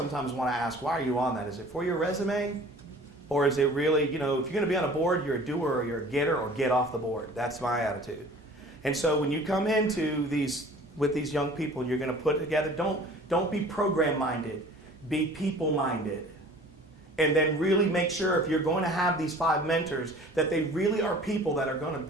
want to ask, why are you on that? Is it for your resume? Or is it really, if you're going to be on a board, you're a doer or you're a getter, or get off the board. That's my attitude. And so when you come into with these young people and you're going to put together, don't be program-minded. Be people-minded. And then really make sure if you're going to have these 5 mentors that they really are people that are going to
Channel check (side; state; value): both; normal; correlation 0.46